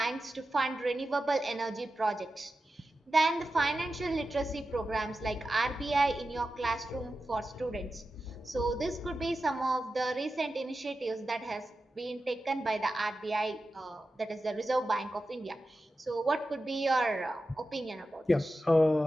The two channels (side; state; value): both; normal; correlation 0.92